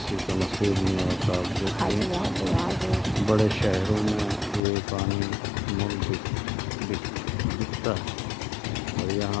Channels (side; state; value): right; drops out; at 4.6 s